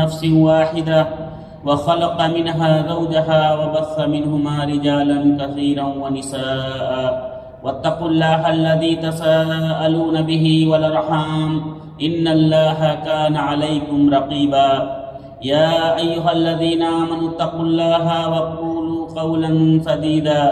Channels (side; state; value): both; identical; correlation 1.00